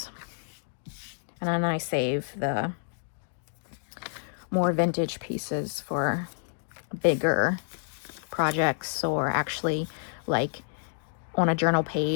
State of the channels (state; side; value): silent; right; digital silence